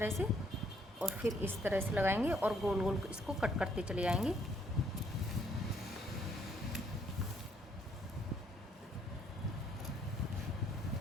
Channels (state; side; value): normal; both; correlation 0.68